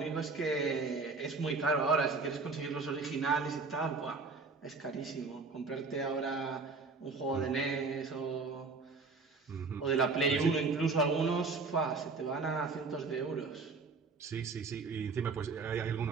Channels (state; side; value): quieter; left; 4.2 dB